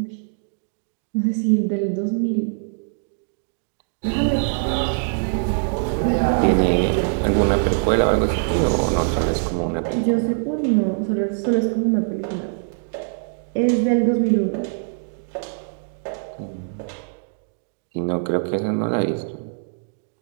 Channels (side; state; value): left; silent; digital silence